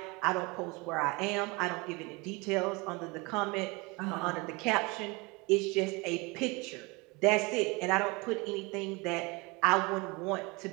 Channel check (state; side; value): quieter; left; 26.3 dB